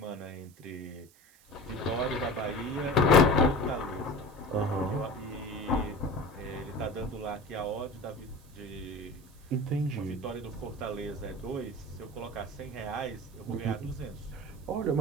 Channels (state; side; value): noise; right; hiss, 27 dB below the sound